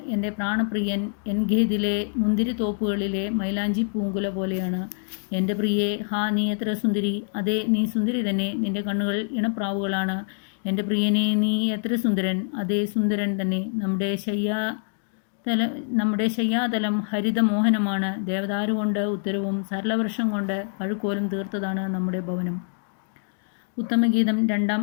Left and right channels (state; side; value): silent; right; digital silence